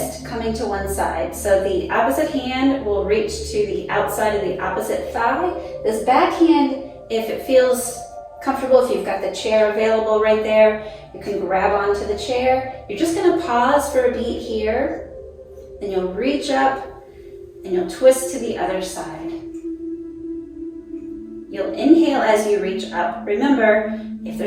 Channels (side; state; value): both; identical; correlation 1.00